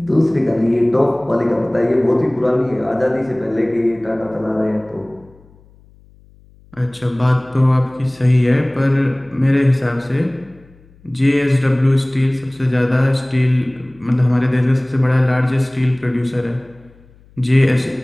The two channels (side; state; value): left; noise; hum, 28 dB below the sound